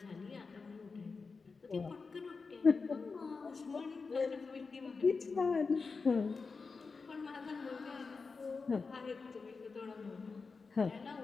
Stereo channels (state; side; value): quieter; right; 4.6 dB